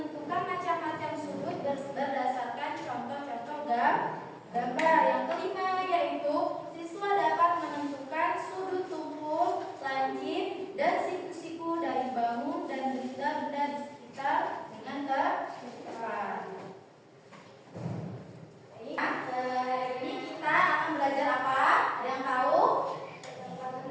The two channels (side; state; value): both; identical; correlation 1.00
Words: macam-macam sudut berdasarkan contoh-contoh gambar. Yang kelima yaitu siswa dapat menentukan sudut tumpul, lancip, dan siku-siku dari bangun dan benda-benda di sekitar dengan tepat. Hari ini kita akan belajar apa? Ada yang tahu?